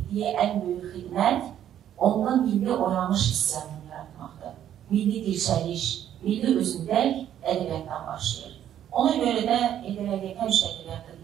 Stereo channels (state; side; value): quieter; left; 10.7 dB